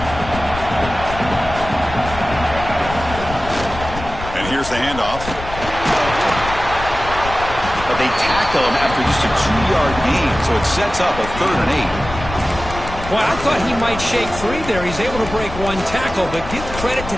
And here's the handoff. But they tackle him after just a 2-yard gain, so it sets up a 3rd and 8. Well, I thought he might shake free there. He's able to break 1 tackle, but give credit to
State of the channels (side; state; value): left; noise; rumble, 10 dB below the sound